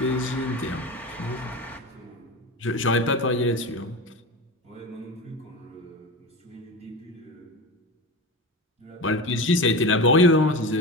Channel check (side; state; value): both; normal; correlation 0.26